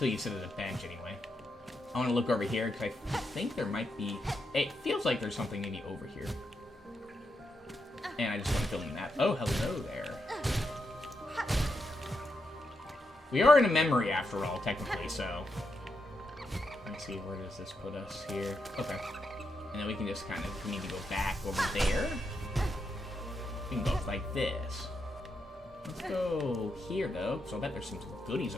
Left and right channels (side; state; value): both; normal; correlation 0.83